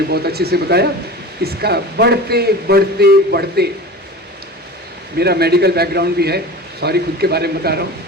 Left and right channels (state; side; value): normal; both; correlation 0.34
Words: बहुत अच्छे से बताया, इसका बढ़ते बढ़ते बढ़ते, मेरा मेडिकल बैकग्राउंड भी है, सॉरी खुद के बारे में बता रहा हूँ,